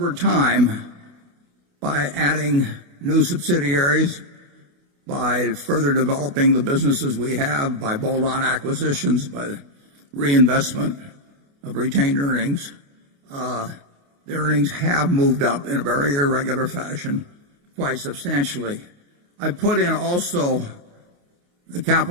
time, by adding new subsidiaries, by further developing the businesses we have, by bolt-on acquisitions, by reinvestment of retained earnings, the earnings have moved up in a very irregular fashion quite substantially. I put in also the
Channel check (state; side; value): late; left; 28 ms